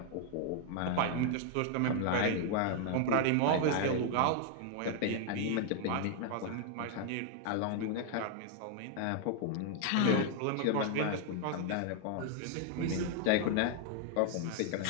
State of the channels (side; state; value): both; different; correlation 0.00